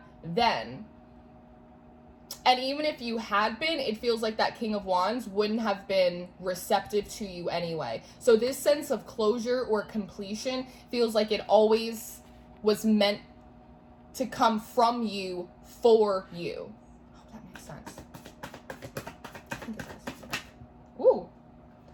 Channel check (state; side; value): identical; both; correlation 1.00